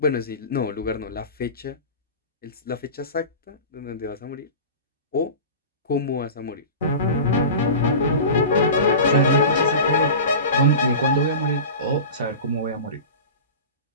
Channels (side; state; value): both; inverted; correlation -0.32